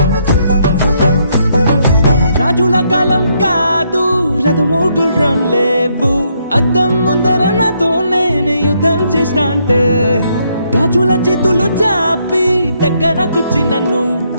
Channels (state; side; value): inverted; both; correlation -0.74